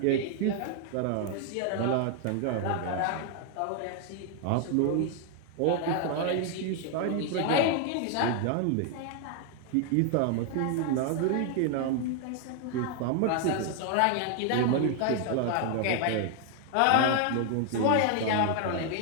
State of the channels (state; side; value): different; both; correlation 0.00